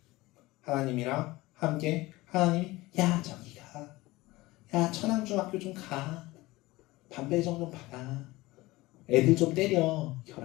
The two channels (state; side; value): quieter; right; 20.0 dB